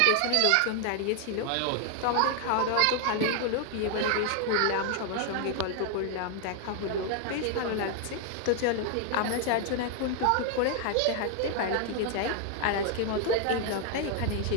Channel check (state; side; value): different; both; correlation 0.00